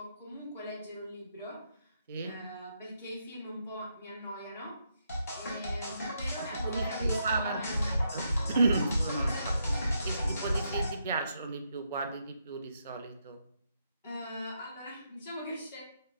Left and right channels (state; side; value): inverted; both; correlation -0.79